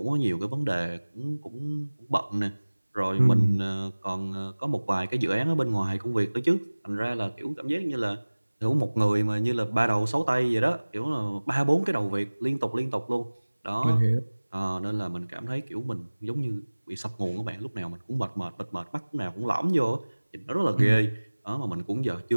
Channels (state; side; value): inverted; both; correlation -1.00